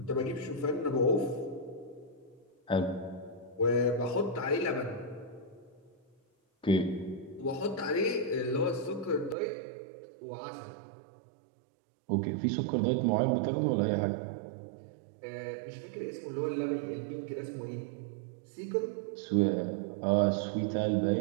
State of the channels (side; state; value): left; drops out; at 9.3 s